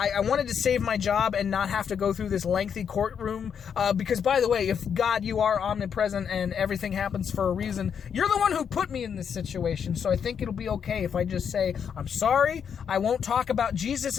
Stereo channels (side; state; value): right; quieter; 7.5 dB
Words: wanted to save my job and not have to go through this lengthy courtroom? Because, by the way, if God, you are omnipresent and everything happens for a reason, you're the one who put me in this situation. So I think it'll be okay if I just say, I'm sorry, I won't talk about Jesus